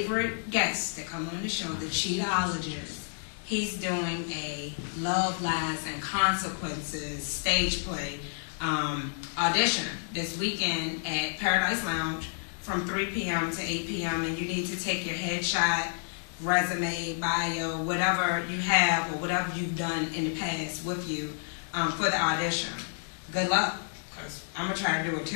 guests that come on the show, the Cheatologist, he's doing a Love, Lies, and Consequences stage play audition this weekend at Paradise Lounge from 3 p.m. to 8 p.m. And you need to take your headshot, resume, bio, whatever you have or whatever you've done in the past with you for the audition. Good luck, because I'm going to try to do it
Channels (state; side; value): silent; right; 58 dB below the other